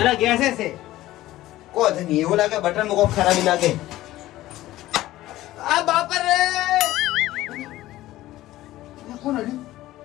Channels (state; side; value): quieter; right; 15.7 dB